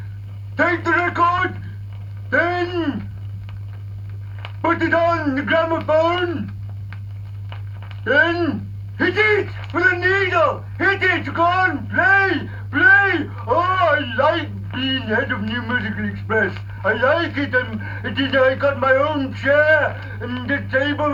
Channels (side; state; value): both; identical; correlation 1.00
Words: take the record, then put it on the gramophone, then hit it with a needle. Hit it, go on, play, play. Oh, I like being head of New Musical Express. I like it, and I got my own chair and the table